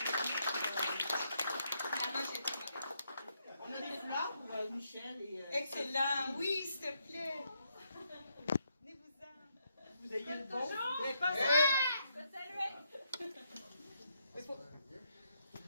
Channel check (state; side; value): inverted; both; correlation -0.78